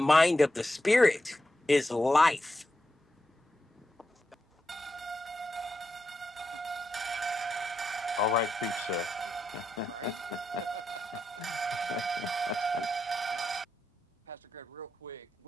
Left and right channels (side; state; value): both; normal; correlation 0.86